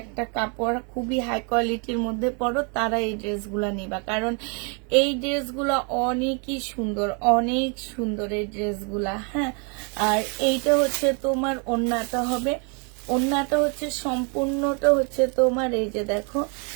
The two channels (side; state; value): left; quieter; 36.4 dB